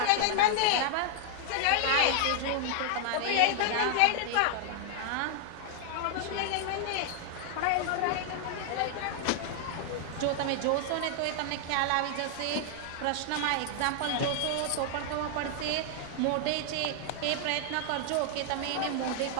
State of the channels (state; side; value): different; both; correlation 0.00